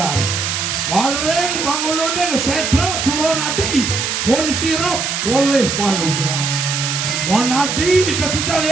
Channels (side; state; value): right; noise; hiss, 1 dB below the sound